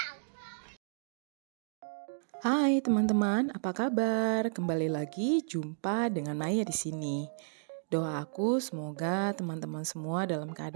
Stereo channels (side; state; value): left; silent; digital silence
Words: Hai teman-teman, apa kabar? Kembali lagi jumpa dengan Naya di sini. Doa aku semoga teman-teman semua dalam